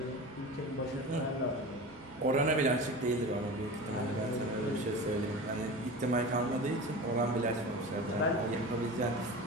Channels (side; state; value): both; normal; correlation 0.32